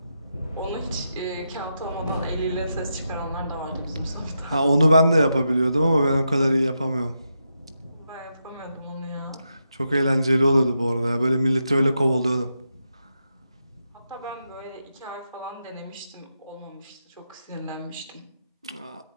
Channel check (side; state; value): both; inverted; correlation -0.85